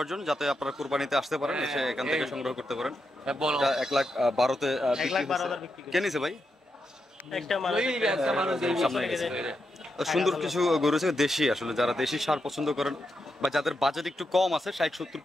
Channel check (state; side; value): normal; both; correlation 0.85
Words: জন্য, যাতে আপনারা কুরবানিতে আসতে পারেন, এসে এখান থেকে সংগ্রহ করতে পারেন। 1,12,000-তে কে নিছে ভাই? সুন্দর কিছু গরু আছে দেশি, আসলে যারা দেশি সার পছন্দ করেন বা যাদের বাজেট একটু কম আছে, 60, 70,